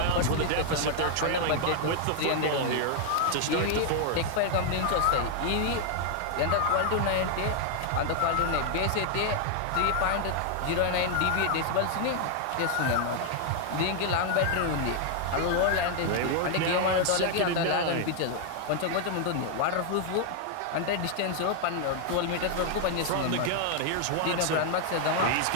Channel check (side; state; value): both; different; correlation 0.00